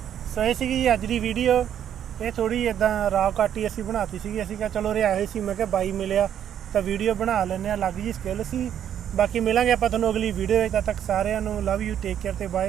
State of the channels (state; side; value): quieter; left; 9.8 dB